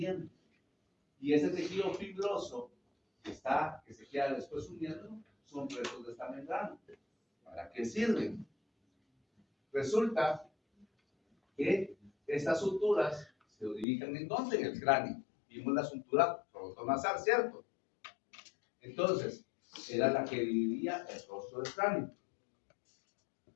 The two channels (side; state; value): right; drops out; at 13.9 s